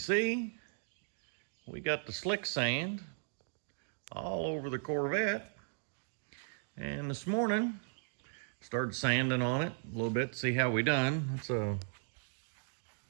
we got the slick sand all over the Corvette. And this morning, started sanding on it a little bit to see how we done. Let's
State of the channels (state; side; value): silent; left; digital silence